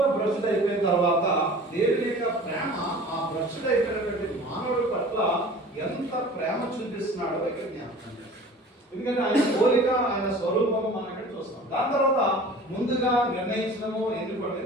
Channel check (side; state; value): both; normal; correlation 0.43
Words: భ్రష్టు అయిపోయిన తర్వాత దేవుని యొక్క ప్రేమ ఆ భ్రష్టు అయిపోయినటువంటి మానవుడి పట్ల ఎంత ప్రేమ చూపిస్తున్నాడో ఇక్కడ జ్ఞాపకం చేస్తాం. ఎందుకంటే ఆయన పోలిక, ఆయన స్వరూపం మనం ఇక్కడ చూస్తాం. దాని తర్వాత ముందుగా నిర్ణయించడము, ఎన్నుకోవడం.